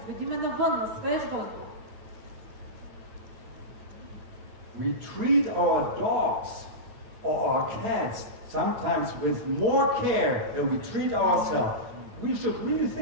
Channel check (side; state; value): left; late; 8.9 ms